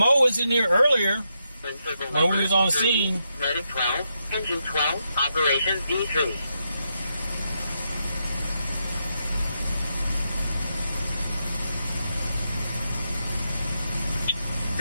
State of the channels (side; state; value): both; inverted; correlation -0.82